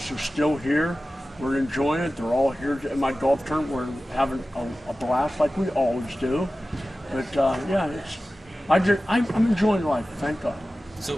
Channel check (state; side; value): normal; both; correlation 0.95